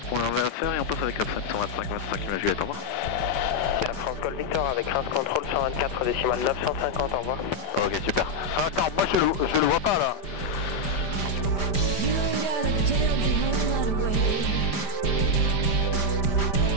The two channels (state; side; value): late; right; 5.0 ms